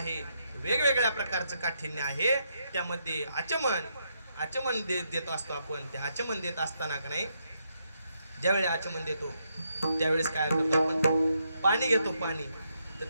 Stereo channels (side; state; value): both; inverted; correlation -0.79